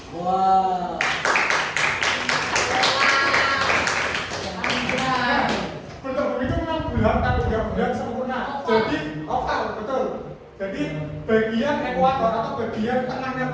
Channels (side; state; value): both; identical; correlation 1.00